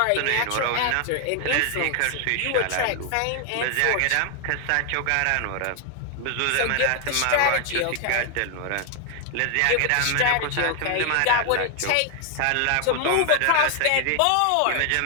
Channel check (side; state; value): both; different; correlation 0.00